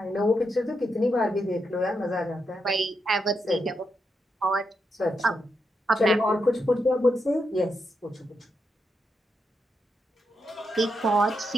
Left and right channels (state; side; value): normal; both; correlation 0.83